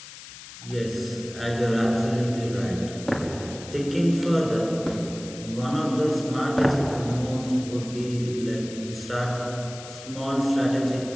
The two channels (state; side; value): noise; left; hiss, 15 dB below the sound